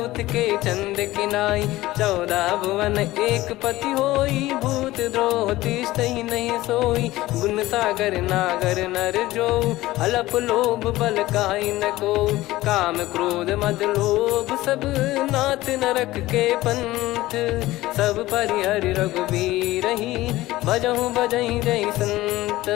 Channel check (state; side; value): quieter; right; 17.3 dB